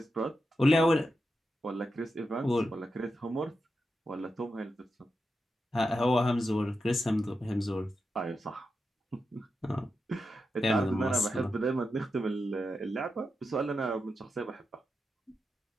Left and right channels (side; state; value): both; normal; correlation 0.88